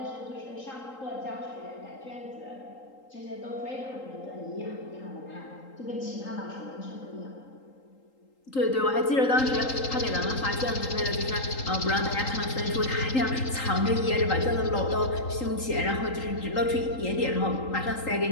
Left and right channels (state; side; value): late; right; 3.8 ms